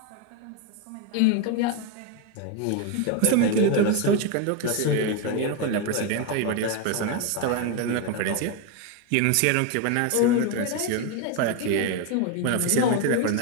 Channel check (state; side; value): different; both; correlation 0.02